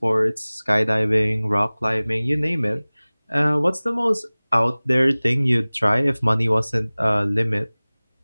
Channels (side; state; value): both; inverted; correlation -1.00